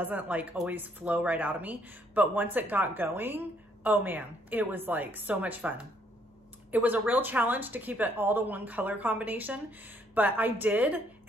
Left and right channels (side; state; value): both; normal; correlation 0.68